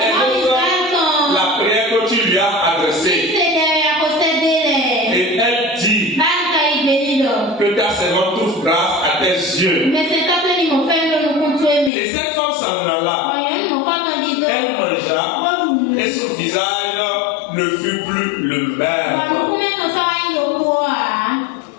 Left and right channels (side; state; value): right; drops out; at 11.9 s